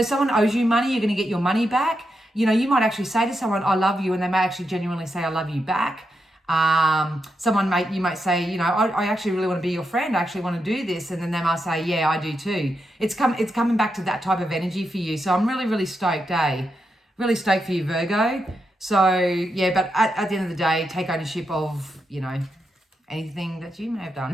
someone owes you money, you're going to get your money back. You know, you might actually say to someone, I love you, and they may actually genuinely say, I love you back. You might say, you know, I actually really want to be your friend. I actually want to do this. And then they might say, yeah, I do too. It's coming back to that type of energy for you. So I'm really, really stoked, Really stoked for you, Virgo. So yeah, but at the end of the day, take ownership of, you know, anything that you may have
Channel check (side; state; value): both; normal; correlation 0.84